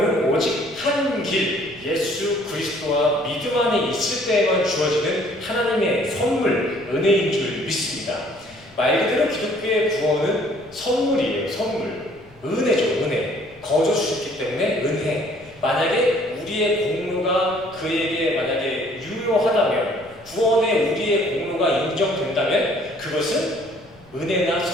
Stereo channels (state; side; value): noise; left; rumble, 28 dB below the sound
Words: 오직 한 길, 예수 그리스도와 믿음 안에 있을 때에만 주어지는 하나님의 선물, 은혜인 줄 믿습니다. 말 그대로 기독교의 구원은 선물이에요. 선물. 은혜죠. 은혜. 거저 주셨기 때문에 은혜. 만약에 우리의 공로가 그에게 만약에 유효하다면, 구원에 우리의 공로가 인정된다면 그것은 은혜나